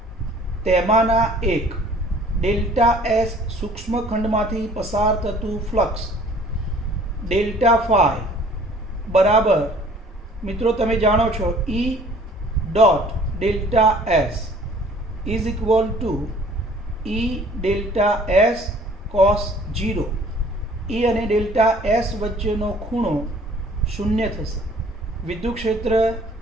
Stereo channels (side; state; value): both; normal; correlation 0.53